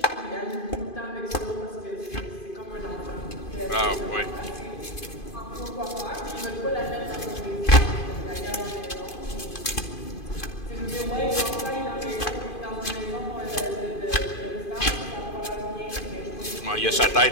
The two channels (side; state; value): right; late; 2.5 ms